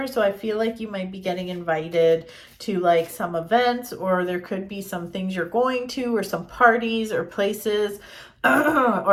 so I feel like you might be getting invited to like some events, or there could be some things you're going to, or some parties or places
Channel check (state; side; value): identical; both; correlation 1.00